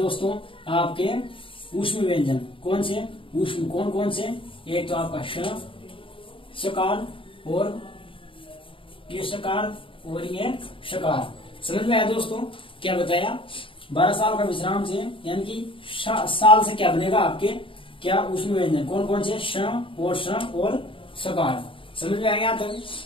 आपके ऊष्म व्यंजन। कौन से? ऊष्म। कौन कौन से? एक तो आपका शकार और ये शकार और ये शकार। समझ में आया दोस्तों? क्या बताया? 12 साल का विश्राम से यानी कि साल से क्या बनेगा आपके? क्या? ऊष्म व्यंजन। कौन कौन से? श और शकार। समझ में आएगा? तक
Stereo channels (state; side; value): late; right; 0.25 ms